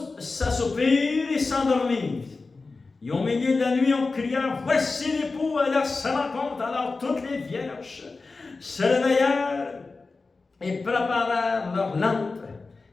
s'assoupirent et s'endormirent. Et au milieu de la nuit, on cria, « Voici l'époux à leur rencontre. » Alors toutes les vierges se réveillèrent et préparèrent leurs lampes.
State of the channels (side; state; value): right; quieter; 3.9 dB